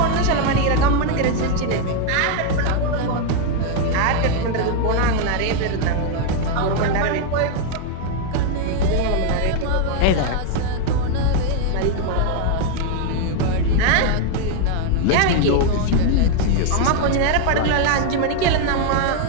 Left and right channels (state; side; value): different; both; correlation 0.01